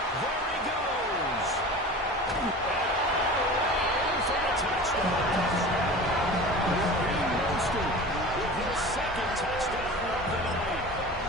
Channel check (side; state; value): both; normal; correlation 0.36